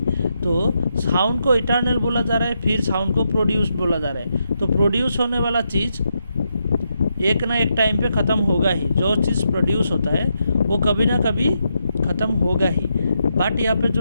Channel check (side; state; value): both; inverted; correlation -0.82